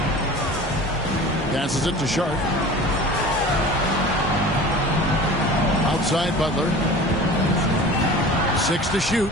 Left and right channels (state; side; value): normal; both; correlation 0.39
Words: Passes it to Sharp. Outside Butler. 6 to shoot.